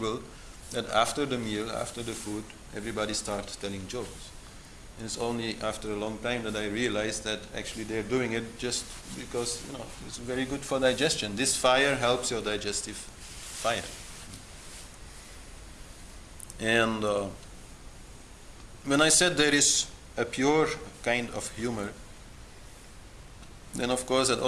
that after the meal, after the food, everybody starts telling jokes. And it's only after a long time that I realized that actually they're doing it just because, it's very good for digestion. This fire helps your digestive fire. And when I said there is a pure kind of humor, then of course that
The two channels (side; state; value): both; identical; correlation 1.00